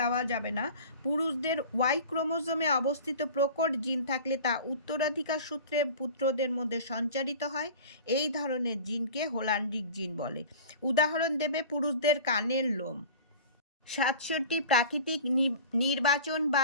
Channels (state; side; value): inverted; both; correlation -0.39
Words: যাবে না। পুরুষদের ওয়াই ক্রোমোজোমে অবস্থিত প্রকট জিন থাকলে তা উত্তরাধিকার সূত্রে পুত্রদের মধ্যে সঞ্চারিত হয়। এই ধরনের জিনকে হোল্যান্ডিক জিন বলে। উদাহরণ দেবে পুরুষদের কানের লোম। 67 প্রাকৃতিক